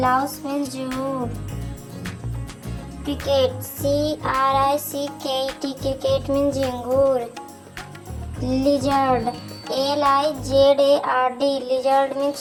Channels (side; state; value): both; identical; correlation 1.00